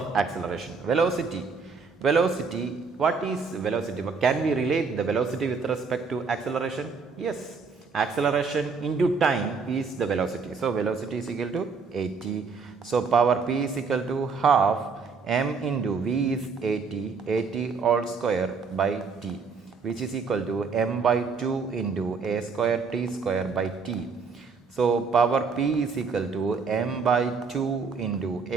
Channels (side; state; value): left; quieter; 5.0 dB